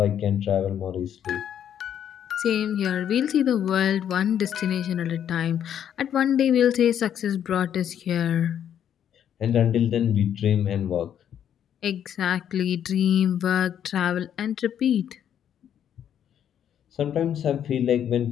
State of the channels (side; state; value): right; quieter; 9.5 dB